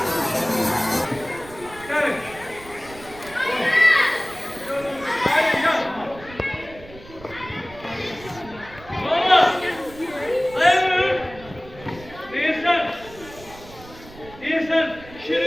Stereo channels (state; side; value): noise; right; rumble, 19 dB below the sound